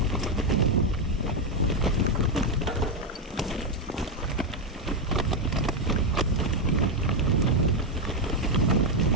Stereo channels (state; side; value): normal; both; correlation 0.04